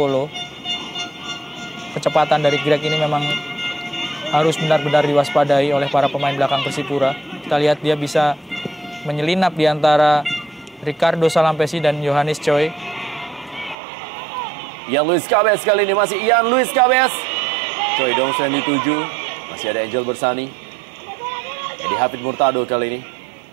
Kecepatan dari Greg ini memang harus benar-benar diwaspadai oleh para pemain belakang Persipura. Kita lihat dia bisa menyelinap di antara Ricardo Salampesi dan Yohanes Choi. Ian Luis Cabez kali ini, masih Ian Luis Cabez. Choi Dong-soo yang dituju. Masih ada Angel Bersani. Eddie Hafid Murtado kali ini.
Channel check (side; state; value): left; drops out; at 13.8 s